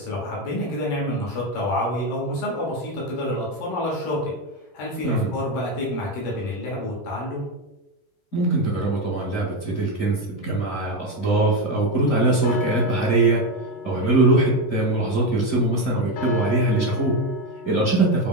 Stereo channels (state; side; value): late; right; 11 ms